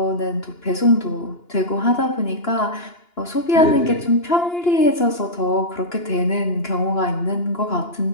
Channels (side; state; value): right; late; 2.9 ms